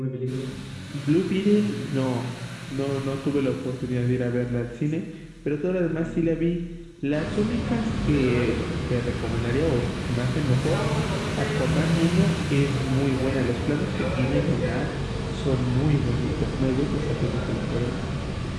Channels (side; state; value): both; identical; correlation 1.00